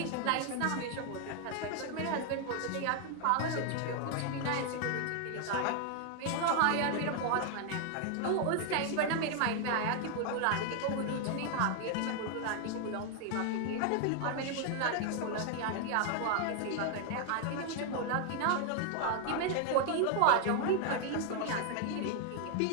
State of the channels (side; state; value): both; different; correlation 0.00